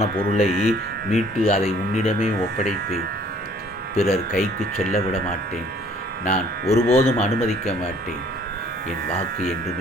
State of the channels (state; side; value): normal; both; correlation 0.57